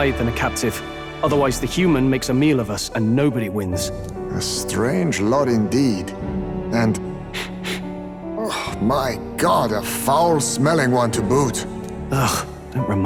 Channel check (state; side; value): identical; both; correlation 1.00